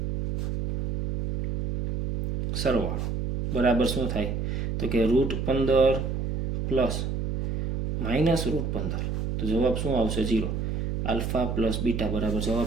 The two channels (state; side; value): noise; right; hum, 2 dB below the sound